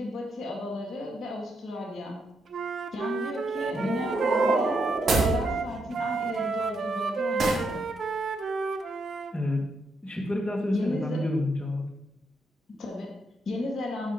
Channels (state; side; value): normal; both; correlation 0.79